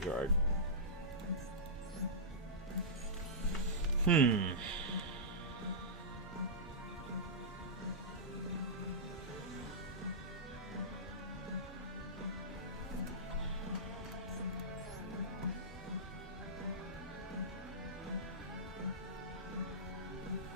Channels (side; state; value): both; normal; correlation -0.16